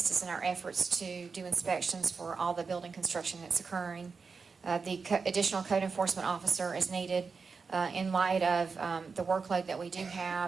us in our efforts to do inspections for all the building construction that's occurring. The additional code enforcement officer is needed in light of the workload that we do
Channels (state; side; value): quieter; left; 5.0 dB